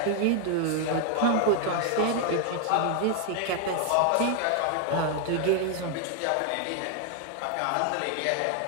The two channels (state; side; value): different; both; correlation 0.00